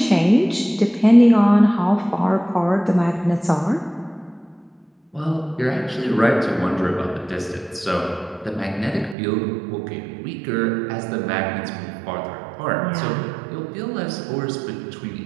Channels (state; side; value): drops out; left; at 9.2 s